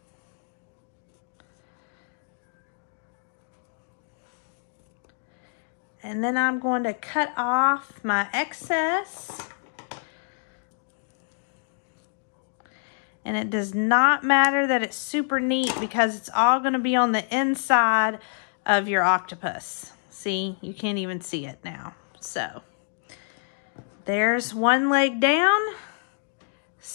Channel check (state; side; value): silent; right; digital silence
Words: And then I'm going to cut off my excess. And it does not matter that it's super neat because it's all going to be on the inside of your octopus. See, you can't even see it now. So there's one leg down,